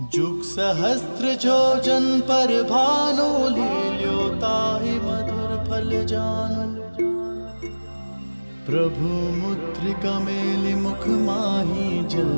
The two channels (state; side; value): inverted; both; correlation -1.00